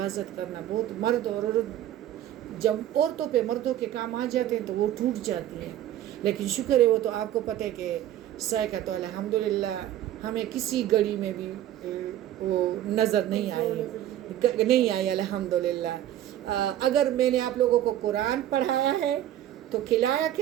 کرنا، بہت مرد اور عورت جب عورتوں پہ مردوں کے کام آ جاتے ہیں تو وہ ٹوٹ جاتی ہیں، لیکن شکر ہے وہ تو آپ کو پتہ ہے کہ سائقہ تو الحمدللہ ہمیں کسی گھڑی میں بھی وہ نظر نہیں آئی الحمدللہ۔ اگر میں نے آپ لوگوں کو قرآن پڑھایا ہے تو کھلایا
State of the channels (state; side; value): quieter; left; 12.3 dB